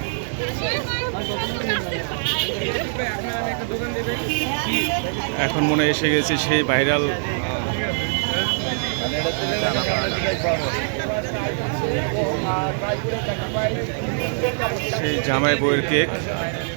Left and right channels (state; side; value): silent; left; digital silence